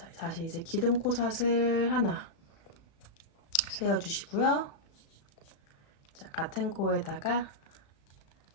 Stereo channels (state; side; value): late; right; 36 ms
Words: 다시 이제 기둥코삿을 하나 세워주시고요. 자, 같은 코에다가